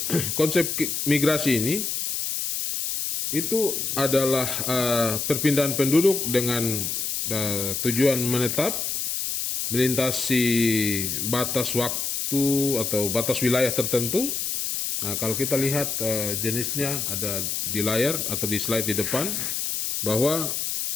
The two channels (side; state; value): left; noise; hiss, 2 dB below the sound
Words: konsep migrasi ini itu adalah perpindahan penduduk dengan tujuan menetap, melintasi batas waktu atau batas wilayah tertentu. Nah, kalau kita lihat jenisnya ada di layar atau di slide di depan, bahwa